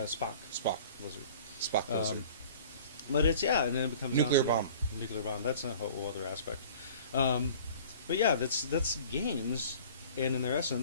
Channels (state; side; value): inverted; both; correlation -0.47